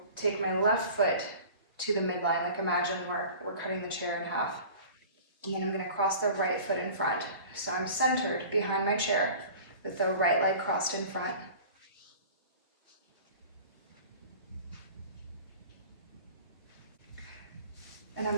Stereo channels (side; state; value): both; inverted; correlation -0.42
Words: take my left foot to the midline, like imagine we're cutting the chair in half. And then I'm going to cross the right foot in front. So I'm centered behind my chair with the right leg crossed in front. And